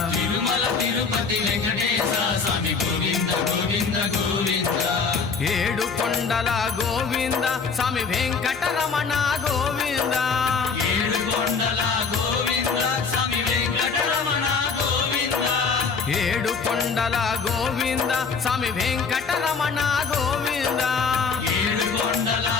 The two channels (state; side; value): quieter; right; 5.2 dB